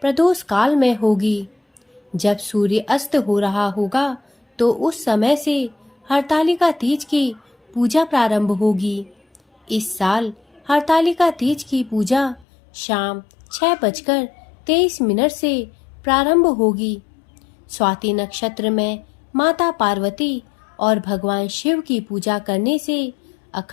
प्रदोष काल में होगी। जब सूर्य अस्त हो रहा होगा तो उस समय से हरतालिका तीज की पूजा प्रारंभ होगी। इस साल हरतालिका तीज की पूजा शाम 6:23 से प्रारंभ होगी। स्वाति नक्षत्र में माता पार्वती और भगवान शिव की पूजा करने से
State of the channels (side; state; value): right; drops out; at 12.5 s